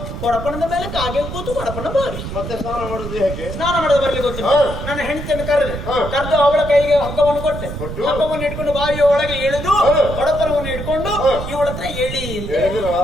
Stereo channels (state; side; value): noise; right; rumble, 7 dB below the sound